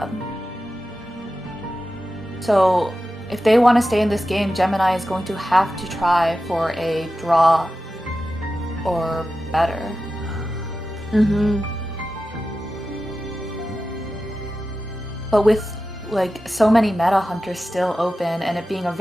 So if they want to stay in this game, Gemini is going to have to try for a draw or better. Mm-hmm. But with like so many meta hunters still open and it being a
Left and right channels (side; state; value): both; normal; correlation 0.93